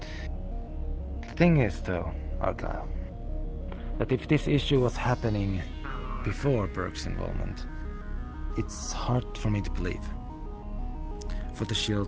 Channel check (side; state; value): both; identical; correlation 1.00